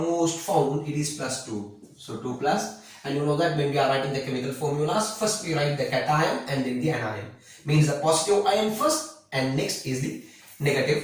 found, it is plus 2. So 2 plus, and you know that when we are writing the chemical formulas, first we write the cation and then the anion. Means the positive ion first and next is the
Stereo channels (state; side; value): identical; both; correlation 1.00